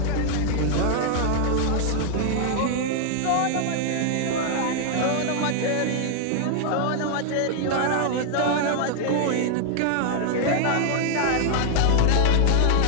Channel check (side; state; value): both; different; correlation 0.00